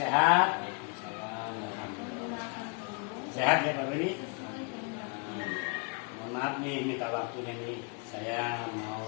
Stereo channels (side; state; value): right; quieter; 34.2 dB